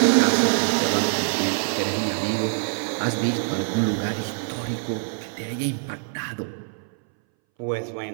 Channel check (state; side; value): silent; left; 61 dB below the other